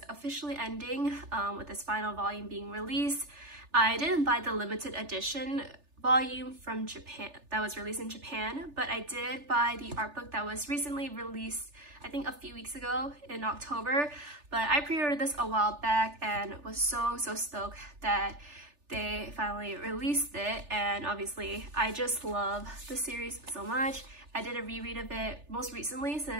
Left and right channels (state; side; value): late; left; 3.4 ms